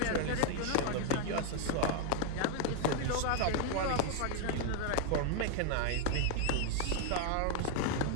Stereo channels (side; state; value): both; different; correlation 0.01